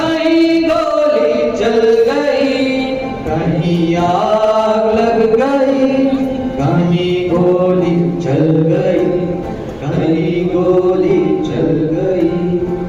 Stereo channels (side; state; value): both; identical; correlation 1.00